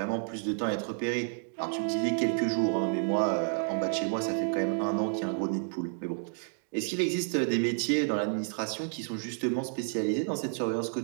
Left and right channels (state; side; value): silent; left; digital silence